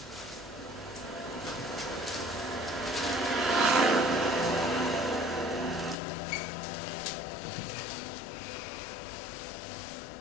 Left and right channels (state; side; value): drops out; right; at 6.0 s